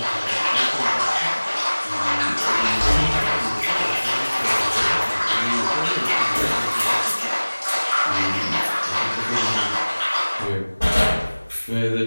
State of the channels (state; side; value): inverted; both; correlation -1.00